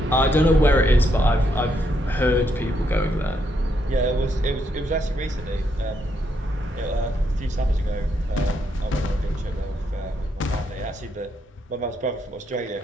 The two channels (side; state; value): both; normal; correlation 0.77